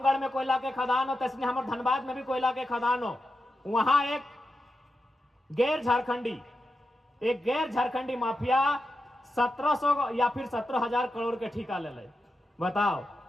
में कोयला के खदान हो, तो इसलिए हमारे धनबाद में भी कोयला के खदान हो। वहां एक गैर झारखंडी माफिया 1700 या फिर 17,000 करोड़ के ठेका ले ले। बताओ,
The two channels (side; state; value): both; normal; correlation 0.89